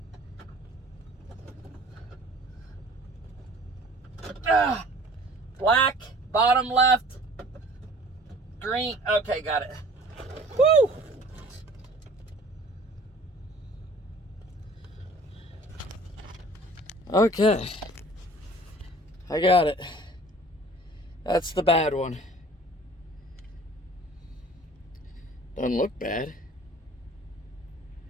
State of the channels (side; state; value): both; normal; correlation 0.49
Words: Black, bottom left. Green. Okay, got it. Woo! Okay. I got it. That's the bad one. Doesn't look bad.